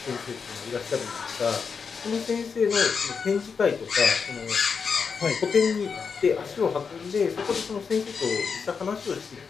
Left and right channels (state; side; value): quieter; right; 5.7 dB